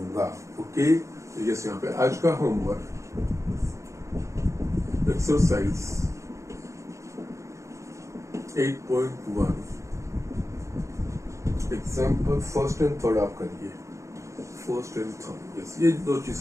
ओके, तो यस यहाँ पे आज का homework exercise 8.1 example first and third आप करिए, फर्स्ट एंड थर्ड। यस, ये दो चीज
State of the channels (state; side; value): late; left; 0.15 ms